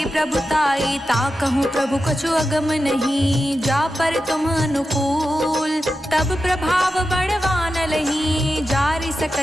प्रभुताई। ताकहु प्रभु कछु अगम नहीं, जा पर तुम अनुकूल। तब प्रभाव बड़वान लही, जारि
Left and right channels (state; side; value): normal; both; correlation 0.91